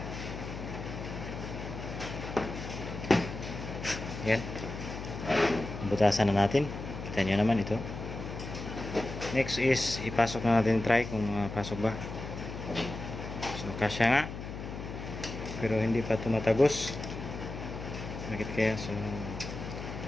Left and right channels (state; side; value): noise; left; hum, 8 dB below the sound